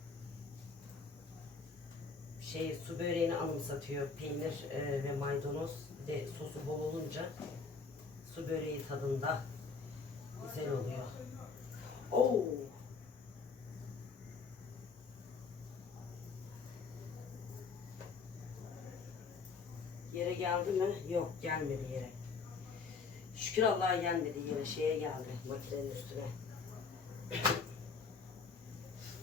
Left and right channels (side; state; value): right; quieter; 4.9 dB